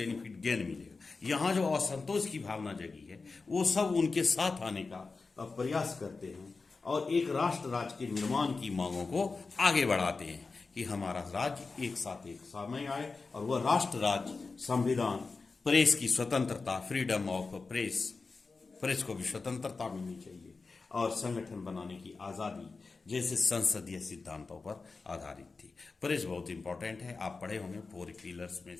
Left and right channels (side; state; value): right; quieter; 4.2 dB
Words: गेन मिलेगा। यहाँ जो असंतोष की भावना जगी है वो सब उनके साथ आने का प्रयास करते हैं और एक राष्ट्र राज्य के निर्माण की मांगों को आगे बढ़ाते हैं कि हमारा राज्य एक साथ एक समय आए और वह राष्ट्र राज्य संविधान, प्रेस की स्वतंत्रता, फ्रीडम ऑफ प्रेस, प्रेस को भी स्वतंत्रता मिलनी चाहिए और संगठन बनाने की आजादी जैसे संसदीय सिद्धांतों पर आधारित थी। प्रेस बहुत इंपॉर्टेंट है, आप पढ़े होंगे, 4 पिलर्स में